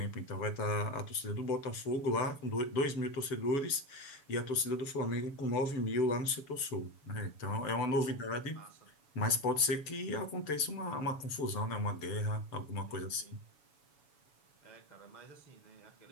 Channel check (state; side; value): late; right; 7.0 ms